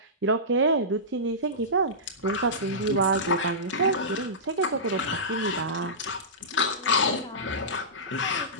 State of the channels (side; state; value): both; normal; correlation -0.18